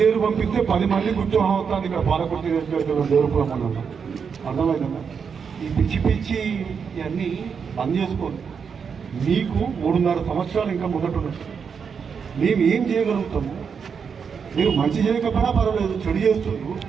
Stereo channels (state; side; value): quieter; left; 6.3 dB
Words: పంపిస్తే 10 మంది ఉత్సాహం అవుతుంది. ఇక్కడ పాలకుర్తి నియోజకవర్గంలో దేవుడుపురం అన్నాం. అర్థమైందా? ఈ పిచ్చి ఇవన్నీ బంద్ చేసుకోండి. మీకు 3.5 సంవత్సరాలు ఇంకా ముందటున్నారు. మేము ఏం చేయగలుగుతాము? మీరు మంచి చేయకపోయినా పర్వాలేదు, చెడు చేస్తున్నారు.